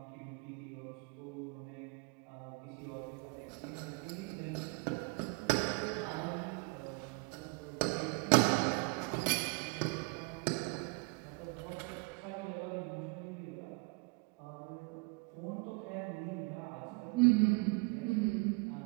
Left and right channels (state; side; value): quieter; left; 30.6 dB